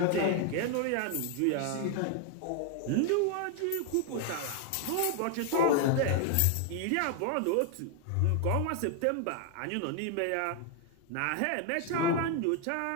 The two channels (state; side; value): different; both; correlation 0.00